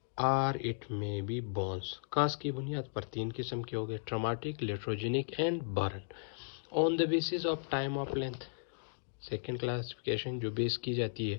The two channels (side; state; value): right; silent; digital silence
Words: it may be burns. काज की बुनियाद पर 3 किस्म के हो गए, traumatic, iatrogenic and burn. On the basis of time of length, second classification जो बेस की जाती है